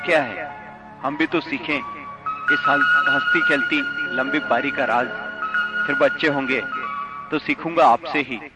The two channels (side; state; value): both; identical; correlation 1.00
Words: है? हम भी तो सीखें इस हंसती खेलती लंबी पारी का राज। फिर बच्चे होंगे तो सीखूंगा आपसे ही